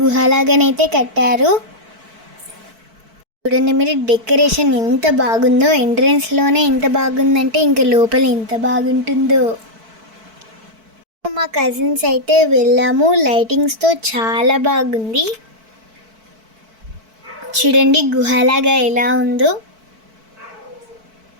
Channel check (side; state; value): left; late; 4.5 ms